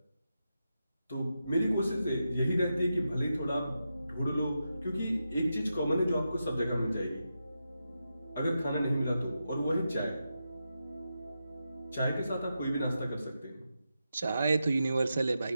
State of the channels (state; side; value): inverted; both; correlation -0.87